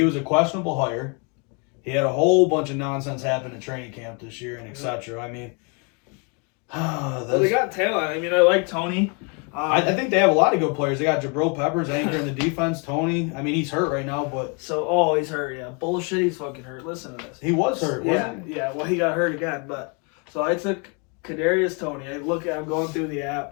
was a questionable hire. He had a whole bunch of nonsense happen in training camp this year and etc. I mean, they got talent. I mean, I like Tony. I think they have a lot of good players. They got Jabril Peppers anchoring the defense. Tony, I mean, he's hurt right now, but he's hurt. Yeah, bullshit. He's fucking hurt. Listen to this. He was hurt. Wasn't he? Yeah. Well, he got hurt again. But so I took Kadarius Toney. I'm going through the app.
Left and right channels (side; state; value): right; quieter; 33.9 dB